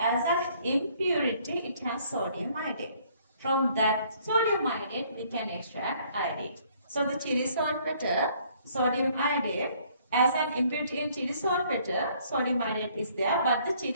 an impurity, it has sodium iodide. From that sodium iodide, we can extract iodide. So the chili saltpeter, sodium iodide, as an impurity in chili saltpeter, sodium iodide is there, but the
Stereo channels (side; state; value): both; inverted; correlation -0.62